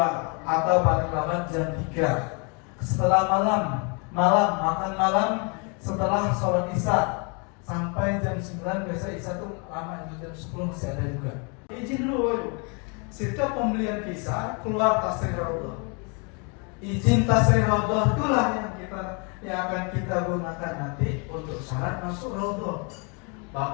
atau paling lambat jam 3. Setelah makan malam setelah sholat isya sampai jam 9, biasa isya tuh lama, jam 10 masih ada juga. Izin dulu, setiap pembelian visa keluar tasrih raudhah. Izin tasrih raudhah itulah yang akan kita gunakan nanti untuk syarat masuk raudhah.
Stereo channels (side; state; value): right; quieter; 34.7 dB